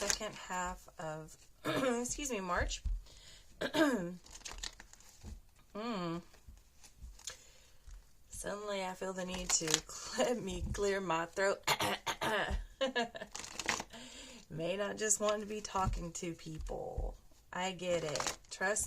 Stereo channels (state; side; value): identical; both; correlation 1.00